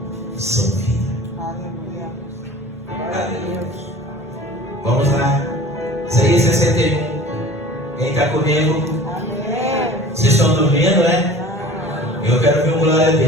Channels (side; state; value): both; normal; correlation 0.43